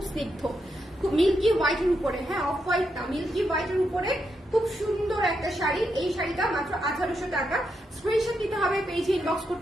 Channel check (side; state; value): both; normal; correlation 0.83